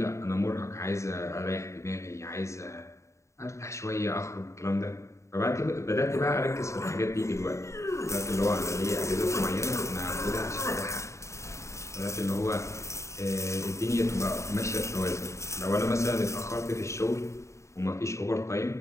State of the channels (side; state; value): right; late; 0.14 ms